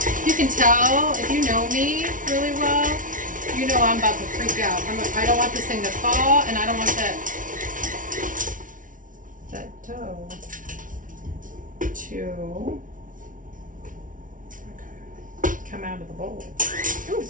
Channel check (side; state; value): left; late; 0.38 ms